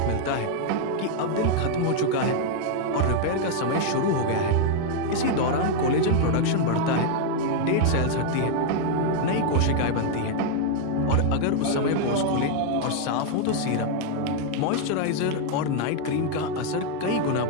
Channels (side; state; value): both; different; correlation 0.00